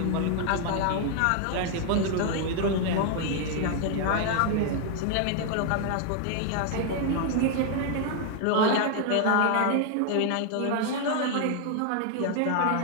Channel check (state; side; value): different; both; correlation 0.00